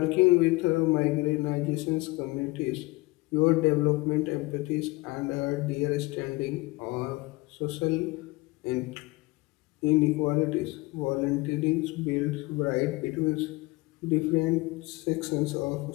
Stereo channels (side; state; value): right; quieter; 22.8 dB